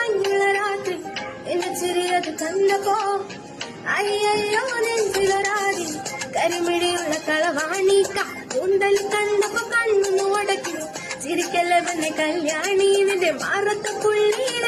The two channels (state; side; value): identical; both; correlation 1.00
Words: രാത്രി എന്നെ ചെറിയത് കണ്ടപ്പോ അയ്യോ നെഞ്ചിലൊരാടി കരിമിടിയുള്ള കളവാണിക്ക കൂന്തൽ കണ്ടപ്പോ കണ്ണു ഉടക്കി ചിരിക്കല്ലവന്റെ കല്യാണി നിന്റെ മാറത്തെ